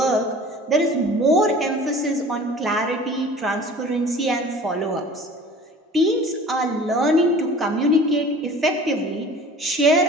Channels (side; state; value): both; normal; correlation 0.44